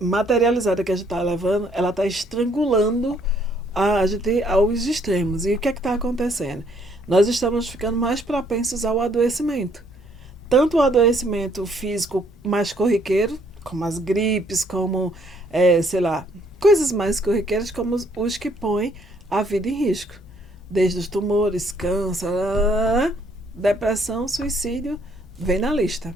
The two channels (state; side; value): normal; both; correlation 0.66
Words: que a gente está levando, ela está estrangulando a gente aos extremos. E o que é que está acontecendo? Nós estamos ficando mais propensos ao adoecimento. Tanto o adoecimento físico mais corriqueiro, como as gripes, como, sei lá, coisas mais corriqueiras, como os que põem a vida em risco. Desde os tumores, câncer, depressão, suicídio, vem na lista.